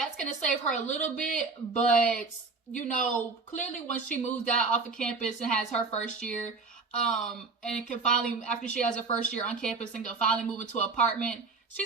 going to save her a little bit, but, you know, clearly when she moves out off of campus and has her first year, and can finally, after she has her first year on campus and can finally move into an apartment,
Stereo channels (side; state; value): left; quieter; 4.3 dB